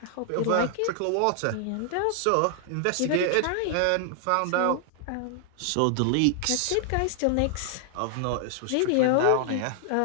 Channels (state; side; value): different; both; correlation 0.00